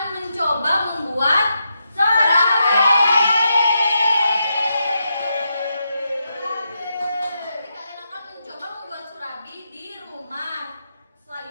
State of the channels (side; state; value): both; inverted; correlation -0.84